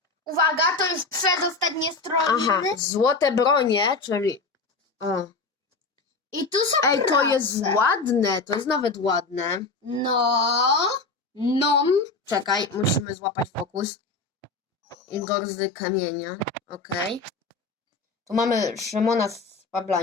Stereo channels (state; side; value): quieter; right; 3.8 dB